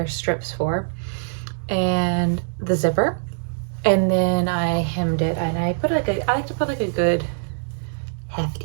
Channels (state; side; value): silent; left; digital silence